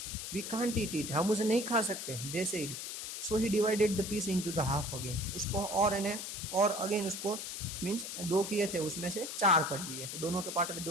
वी कांट ईट इट, हम उसे नहीं खा सकते, they said. So he divided the piece into the half again, उसको और अगेन उसको मीन्स 2 किए थे, उसमें से 4 कर दिए, तो दोनों के पार्ट में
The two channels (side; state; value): left; noise; hiss, 6 dB below the sound